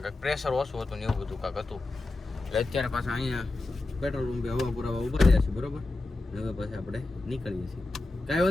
કાંક પ્રેશર ઓછું હતું ને એવું બધું કાંક હતું. એટલે અત્યારે પાછા અહીંયા પેટ્રોલ પંપે હવા પુરાવા ઉભા રહ્યા છે બરોબર. હવે પછી આપણે નીકળીએ છીએ. કાંઈ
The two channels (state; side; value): quieter; right; 3.1 dB